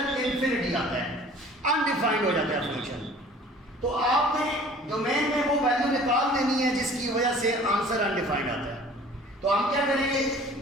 इन्फिनिटी आता है, अनडिफाइंड हो जाता है फंक्शन। तो आपने डोमेन में वो वैल्यू निकाल देनी है जिसकी वजह से आंसर अनडिफाइंड आता है। तो हम क्या करेंगे,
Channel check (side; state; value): both; normal; correlation 0.49